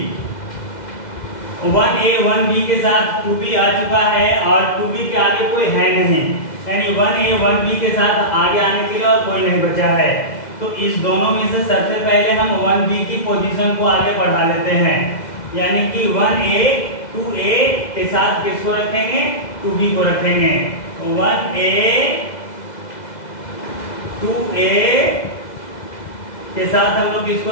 1A 1B के साथ 2B आ चुका है और 2B के आगे कोई है नहीं, यानी 1A 1B के साथ आगे आने के लिए और कोई नहीं बचा है। तो इस दोनों में से सबसे पहले हम 1B की पोजीशन को आगे बढ़ा लेते हैं, यानी कि 1A 2A के साथ किसको रखेंगे? 2B को रखेंगे। 1A 2A के साथ हम लोग किसको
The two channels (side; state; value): right; late; 2.0 ms